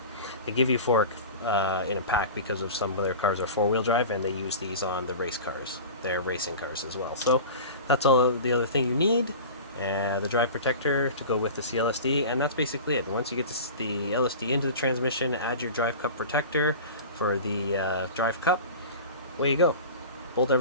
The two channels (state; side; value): inverted; both; correlation -0.34